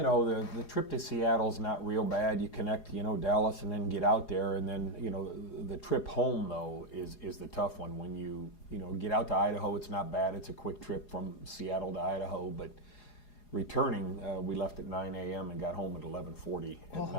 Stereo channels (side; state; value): right; late; 4.8 ms